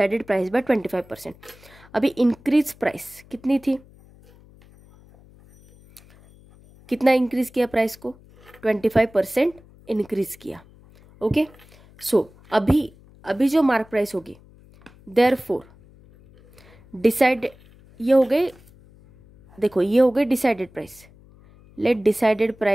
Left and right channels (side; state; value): left; noise; hum, 26 dB below the sound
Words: price by 25%। अभी इंक्रीज प्राइस कितनी थी, कितना इंक्रीज किया प्राइस को, 25% इंक्रीज किया। ओके। सो अभी जो मार्क प्राइस होगी, देयरफॉर डिसाइड, ये हो गए, देखो ये हो गए decided price. Let decided